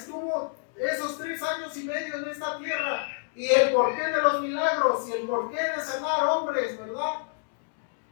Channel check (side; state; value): right; silent; digital silence